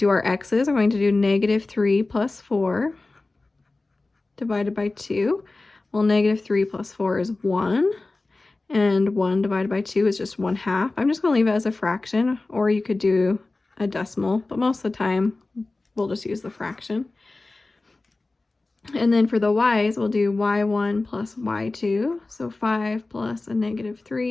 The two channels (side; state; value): right; quieter; 3.3 dB